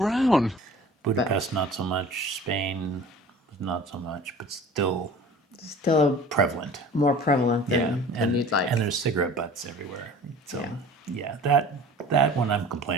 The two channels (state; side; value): normal; both; correlation 0.44